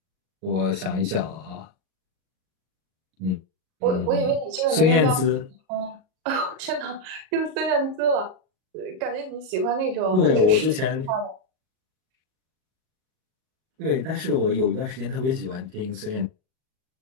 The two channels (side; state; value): left; late; 38 ms